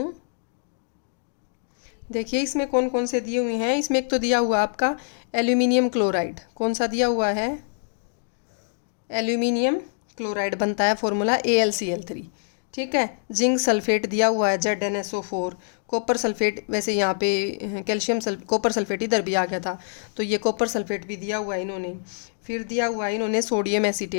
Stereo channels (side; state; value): right; silent; digital silence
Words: देखिए इसमें कौन कौन से दिए हुए हैं। इसमें एक तो दिया हुआ आपका एल्यूमिनियम क्लोराइड, कौन सा दिया हुआ है, एल्यूमिनियम क्लोराइड बनता है फॉर्मूला AlCl3, ठीक है। जिंक सल्फेट दिया हुआ है ZnSO4, कॉपर सल्फेट, वैसे यहाँ पे कॉपर सल्फेट इधर भी आ गया था तो ये कॉपर सल्फेट भी दिया हुआ है इन्होंने। फिर दिया हुआ है इन्होंने सोडियम